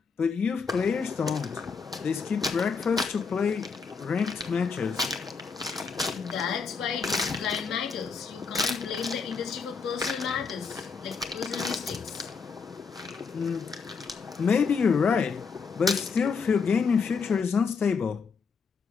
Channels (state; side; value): quieter; right; 5.4 dB